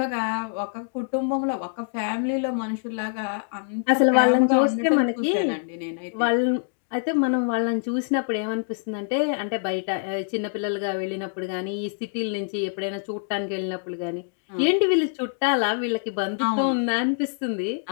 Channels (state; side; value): silent; right; digital silence